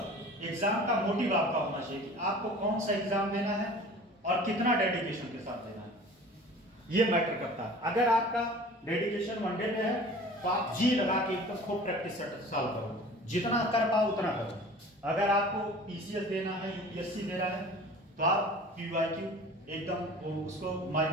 एग्जाम का मोटिव आपका होना चाहिए कि आपको कौन सा एग्जाम देना है और कितना डेडिकेशन के साथ देना है, ये मैटर करता है। अगर आपका डेडिकेशन वनडे में है तो आप जी लगा के एकदम खूब प्रैक्टिस सॉल्व करो, जितना कर पाओ उतना करो। अगर आपको पीसीएस देना है, यूपीएससी देना है, तो आप पीवाईक्यू एकदम उसको माय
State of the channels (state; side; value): normal; both; correlation 0.43